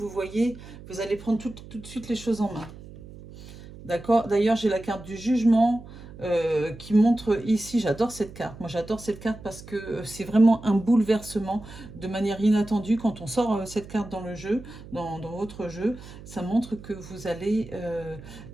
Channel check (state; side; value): noise; right; hum, 16 dB below the sound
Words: voyez, vous allez prendre tout de suite les choses en main. D'accord. D'ailleurs, j'ai la carte du jugement qui montre ici, j'adore cette carte. Moi, j'adore cette carte parce que c'est vraiment un bouleversement de manière inattendue. Quand on sort cette carte dans le jeu, dans votre jeu, ça montre que vous allez...